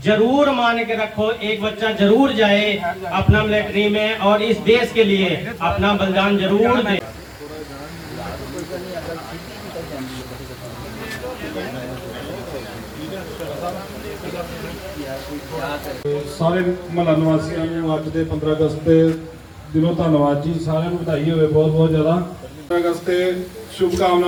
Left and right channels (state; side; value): identical; both; correlation 1.00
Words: जरूर मान के रखो, एक बच्चा जरूर जाए अपना मिलिट्री में और इस देश के लिए अपना बलिदान जरूर दे। ਸਾਰੇ ਮਹੱਲਾ ਨਿਵਾਸੀਆਂ ਨੂੰ ਅੱਜ ਦੇ 15 ਅਗਸਤ ਦੇ ਦਿਨੋਂ ਧੰਨਵਾਦ ਜੀ, ਸਾਰਿਆਂ ਨੂੰ ਵਧਾਈ ਹੋਵੇ ਬਹੁਤ ਬਹੁਤ ਜ਼ਿਆਦਾ। 15 ਅਗਸਤ ਤੇ ਸ਼ੁਭ